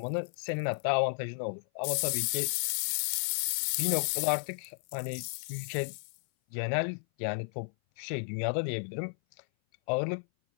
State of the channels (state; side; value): silent; right; 56 dB below the other